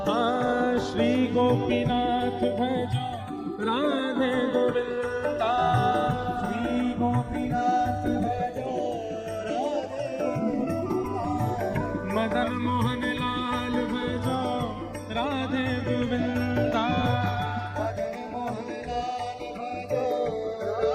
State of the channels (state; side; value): identical; both; correlation 1.00